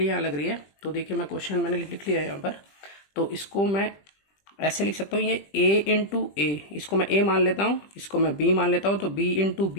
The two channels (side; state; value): right; late; 20 ms